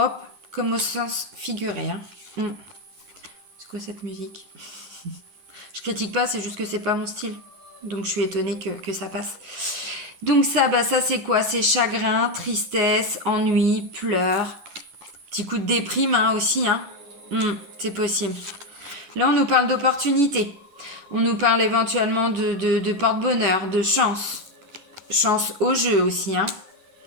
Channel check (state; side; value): late; left; 10 ms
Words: comme au sens figuré. Hein. C'est quoi cette musique? Je critique pas, c'est juste que c'est pas mon style. Donc, je suis étonnée que ça passe. Donc ça, bah ça c'est quoi? C'est chagrin, tristesse, ennui, pleurs. Petit coup de déprime hein, aussi. Hein. C'est possible. Là, on nous parle d'opportunités. On nous parle éventuellement de porte-bonheur, de chance. Chance au jeu aussi. Hein.